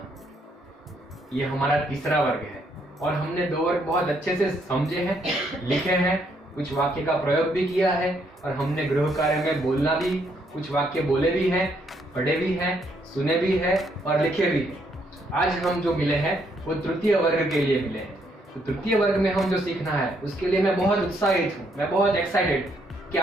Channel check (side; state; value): both; normal; correlation 0.72